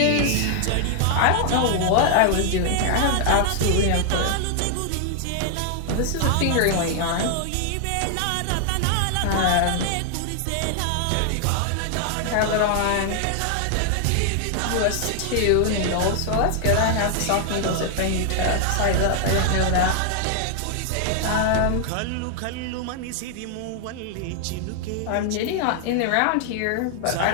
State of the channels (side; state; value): both; different; correlation 0.00